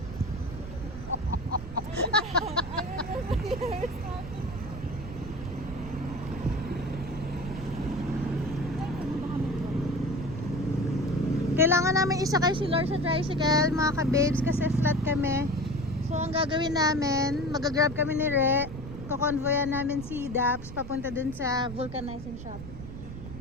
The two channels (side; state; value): right; noise; rumble, 11 dB below the sound